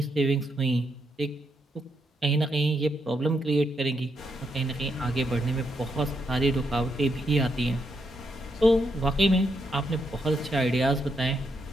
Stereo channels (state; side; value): normal; both; correlation 0.80